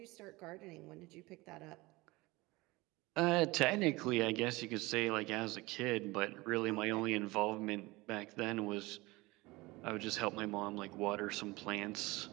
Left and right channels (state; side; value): quieter; left; 21.9 dB